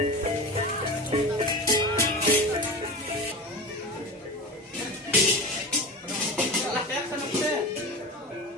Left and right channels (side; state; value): both; normal; correlation 0.28